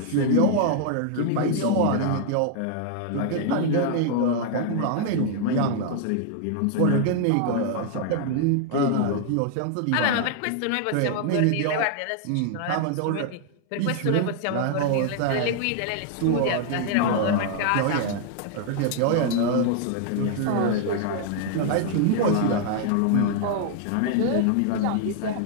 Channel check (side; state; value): both; different; correlation 0.00